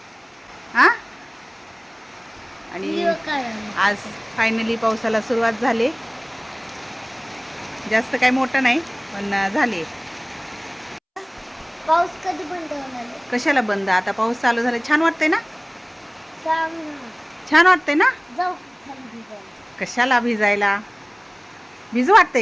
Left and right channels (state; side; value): identical; both; correlation 1.00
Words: हां, आणि आज फायनली पावसाला सुरुवात झाली. जास्त काही मोठं नाही, पण झाले. पाऊस कधी बंद होणार? कशाला बंद? आता पाऊस चालू झाला. छान वाटतंय ना. छान वाटतंय ना. जाऊ कशाला भिजायला? भिजू